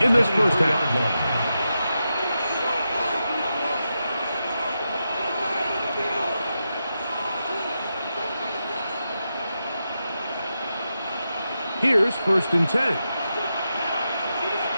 in this first half. Here's 1st and 10.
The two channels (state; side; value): inverted; both; correlation -0.88